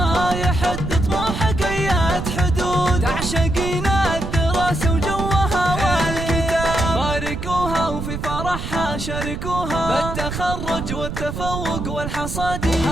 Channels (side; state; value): right; noise; rumble, 6 dB below the sound